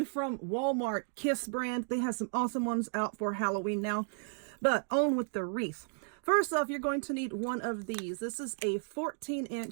from Walmart, Kiss brand. They have some awesome ones out for Halloween now. But on with the wreath. First off, you're going to need one of these. This is a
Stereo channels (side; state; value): left; silent; digital silence